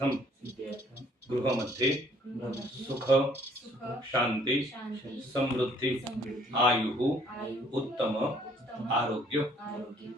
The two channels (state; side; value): normal; both; correlation 0.61